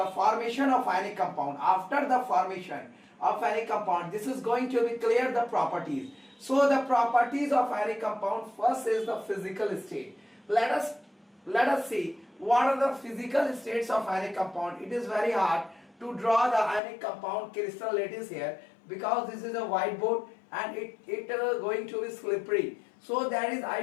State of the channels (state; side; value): drops out; right; at 16.8 s